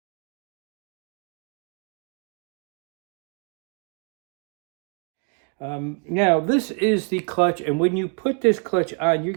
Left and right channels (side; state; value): left; quieter; 37.9 dB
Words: Now this is the clutch, and when you put this clutch on, you're